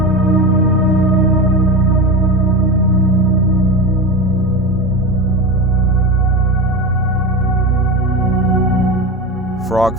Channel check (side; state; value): both; normal; correlation 0.23